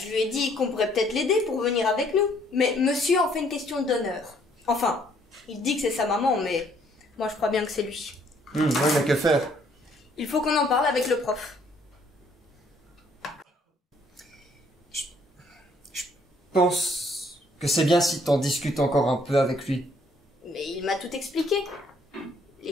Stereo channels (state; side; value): normal; both; correlation 0.65